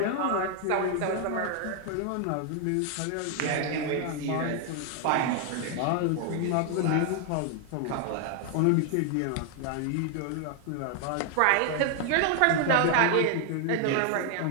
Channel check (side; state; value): both; different; correlation 0.00